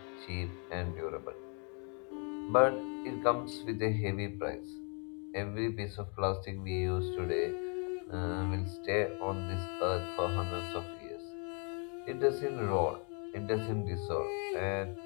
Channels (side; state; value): right; quieter; 38.2 dB